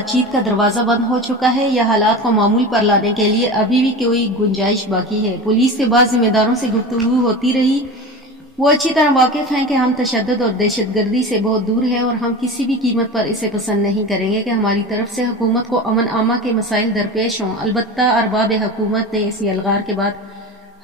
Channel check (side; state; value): both; normal; correlation 0.30